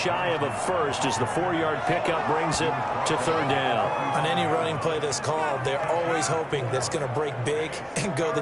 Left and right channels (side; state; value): both; identical; correlation 1.00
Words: of a first as the 4-yard pickup brings it to 3rd down. On any running play that's called, they're always hoping that it's going to break big and go the